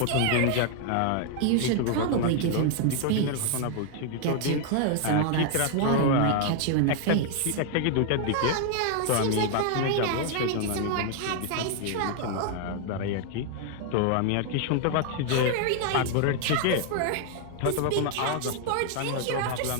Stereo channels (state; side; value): different; both; correlation 0.00